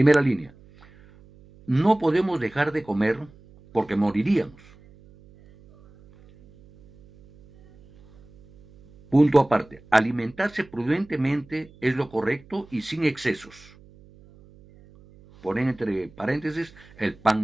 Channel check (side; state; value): right; noise; hum, 25 dB below the sound